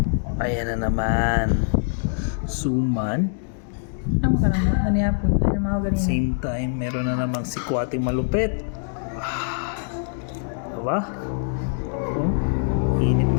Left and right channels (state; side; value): silent; right; digital silence